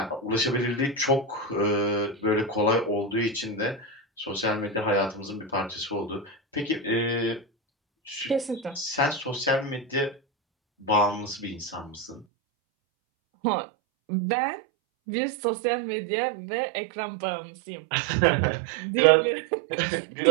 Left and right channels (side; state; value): left; drops out; at 12.2 s